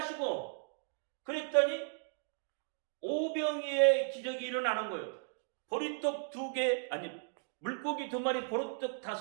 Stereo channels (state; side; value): silent; left; digital silence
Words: 그랬더니 오병이의 기적이 일어나는 거예요. 보리떡 2개 물고기 2마리 보리떡